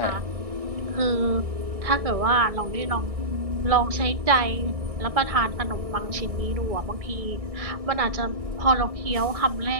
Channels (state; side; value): late; left; 1.6 ms